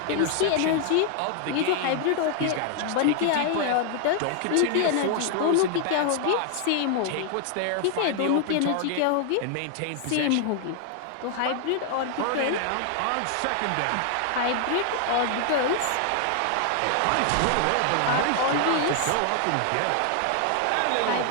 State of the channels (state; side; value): different; both; correlation 0.00